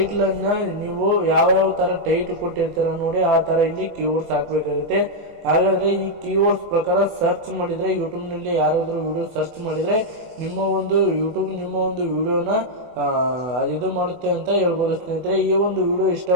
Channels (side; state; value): left; late; 24 ms